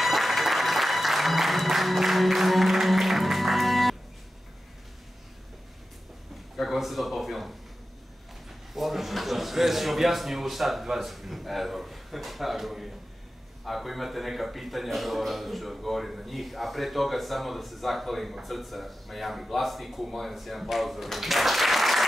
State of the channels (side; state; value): both; normal; correlation 0.93